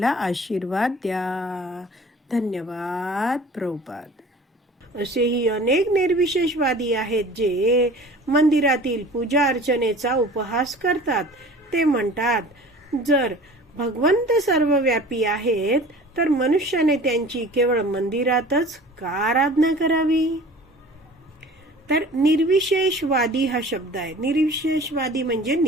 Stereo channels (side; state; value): both; normal; correlation 0.43